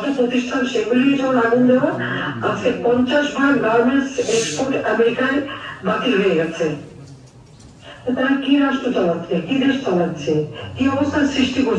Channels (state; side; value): identical; both; correlation 1.00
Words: প্রতিষ্ঠান সেগুলি যেমন আগুন দেওয়া, আজকে ৫০ ভাগ গার্মেন্টস এক্সপোর্ট আমেরিকায় বাতিল হয়ে গেছে। তারা কি রাষ্ট্র চালাচ্ছে, কি দেশ চালাচ্ছে, কি অবস্থার সৃষ্টি